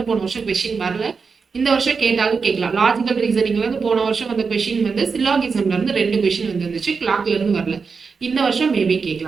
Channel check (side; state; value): left; quieter; 5.2 dB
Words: போன வருஷம் கொஸ்டின் வரல. இந்த வருஷம் கேட்டாலும் கேட்கலாம். லாஜிக்கல் ரீசனிங்ல இருந்து போன வருஷம் வந்த கொஸ்டின் வந்து சில்லாகிசம்ல இருந்து 2 கொஸ்டின் வந்துருந்துச்சு. கிளாக்ல இருந்து வரல. இந்த வருஷம் மேபி